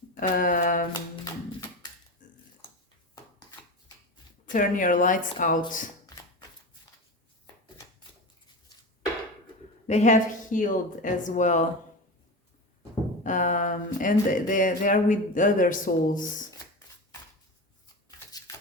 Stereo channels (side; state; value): both; normal; correlation 0.26